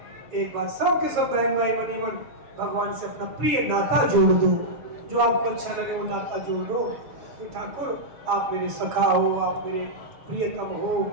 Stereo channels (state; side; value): late; left; 7.2 ms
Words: एक बार सब के सब बहन भाई बनी मन भगवान से अपना प्रिय नाता जोड़ दो, जो आपको अच्छा लगे वो नाता जोड़ दो कि ठाकुर आप मेरे सखा हो, आप मेरे प्रियतम हो,